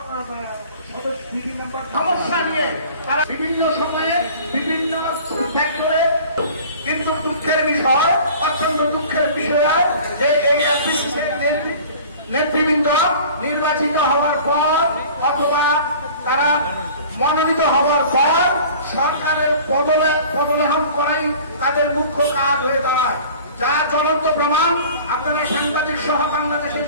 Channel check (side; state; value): both; inverted; correlation -0.44